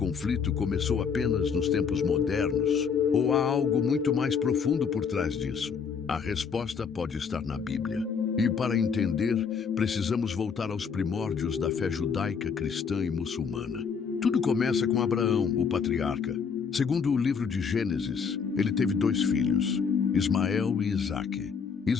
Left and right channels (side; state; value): right; quieter; 6.2 dB